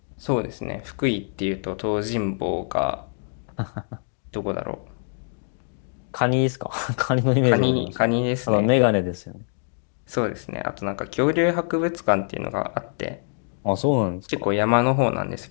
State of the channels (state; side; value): silent; right; 62 dB below the other